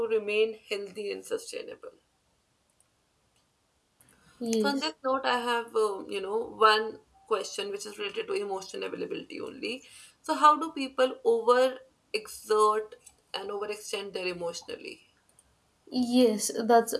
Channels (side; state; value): both; identical; correlation 1.00